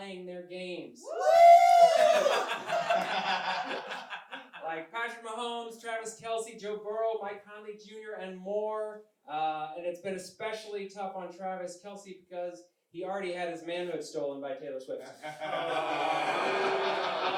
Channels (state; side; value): identical; both; correlation 1.00